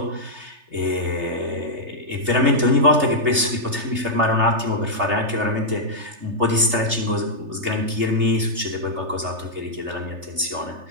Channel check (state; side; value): late; left; 3.3 ms